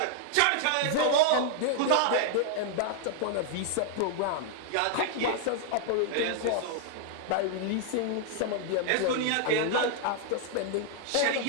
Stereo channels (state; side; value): different; both; correlation -0.01